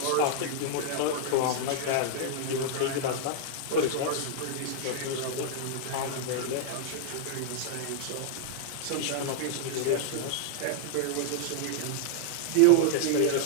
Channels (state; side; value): different; both; correlation -0.01